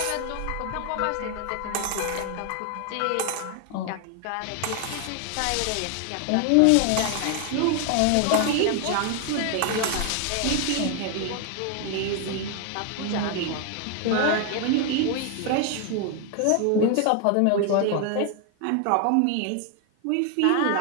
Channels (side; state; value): both; different; correlation 0.00